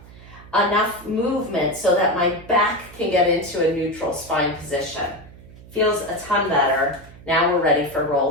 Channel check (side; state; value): right; noise; hum, 20 dB below the sound